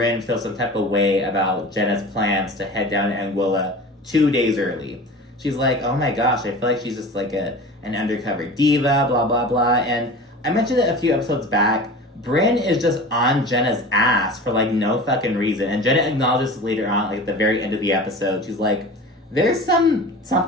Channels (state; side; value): normal; both; correlation 0.36